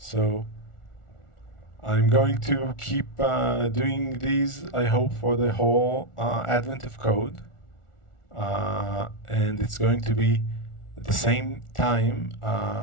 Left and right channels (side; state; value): right; late; 1.4 ms